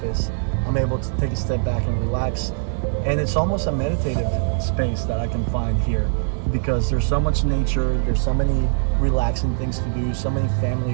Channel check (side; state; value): left; silent; digital silence